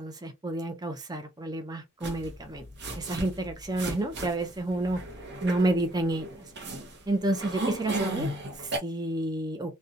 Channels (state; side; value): normal; both; correlation 0.66